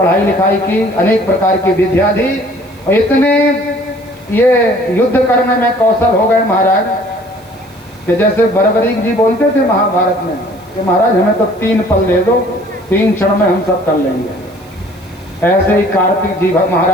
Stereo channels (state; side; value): noise; right; hiss, 29 dB below the sound